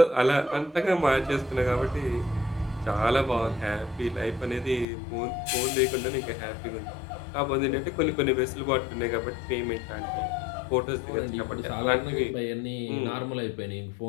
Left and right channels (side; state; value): right; drops out; at 4.9 s